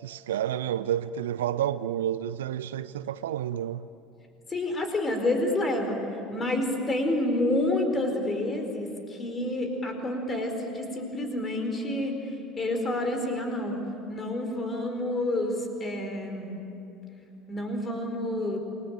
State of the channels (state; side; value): normal; both; correlation 0.33